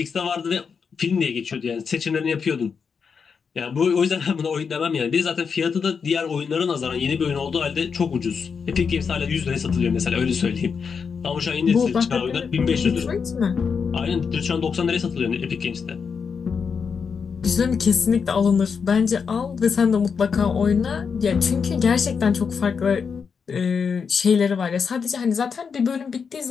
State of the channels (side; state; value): right; quieter; 6.0 dB